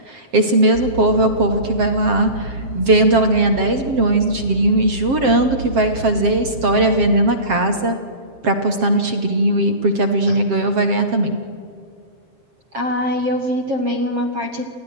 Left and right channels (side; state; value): left; late; 7.5 ms